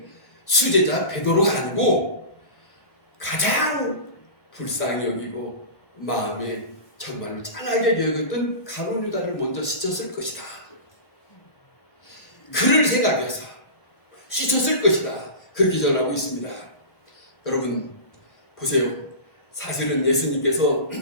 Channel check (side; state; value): right; late; 1.2 ms